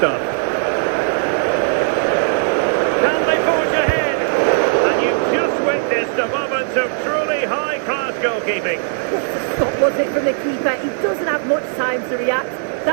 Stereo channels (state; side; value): silent; left; digital silence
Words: Can they forge ahead? And you've just witnessed a moment of truly high-class goalkeeping. What a stop was it from the keeper? He doesn't have much time to react.